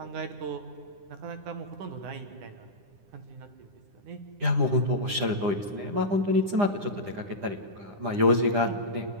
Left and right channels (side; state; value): left; late; 9.9 ms